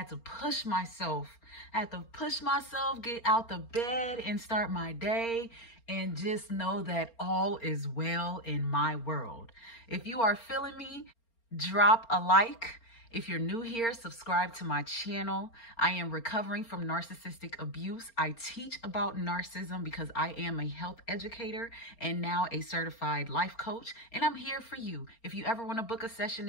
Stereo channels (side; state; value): right; late; 4.3 ms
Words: to push myself. Get out the bed and start my day and just know that all is well in my world. If you are feeling me, drop a like. If you're new here, subscribe to my channel. I am recovering from narcissistic abuse. I teach about narcissism because I am a health educator and now a certified life coach. And I'm here for you. If you ever want to book a session